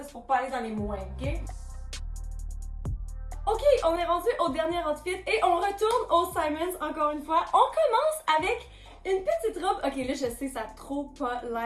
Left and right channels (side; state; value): both; identical; correlation 1.00